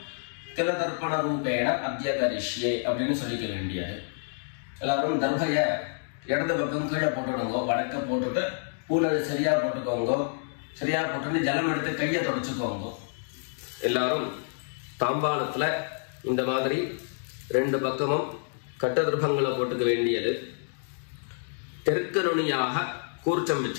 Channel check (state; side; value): silent; right; digital silence